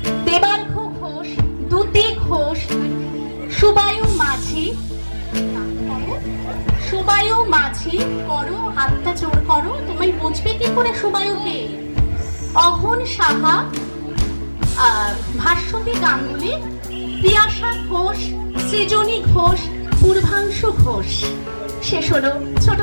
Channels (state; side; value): inverted; both; correlation -1.00